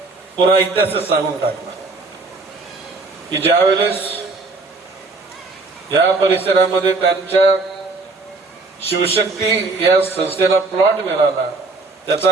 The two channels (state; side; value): quieter; left; 3.6 dB